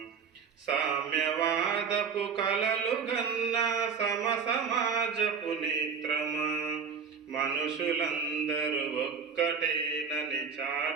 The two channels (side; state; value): left; quieter; 6.0 dB